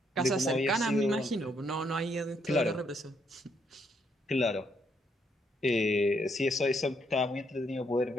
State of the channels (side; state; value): both; normal; correlation 0.74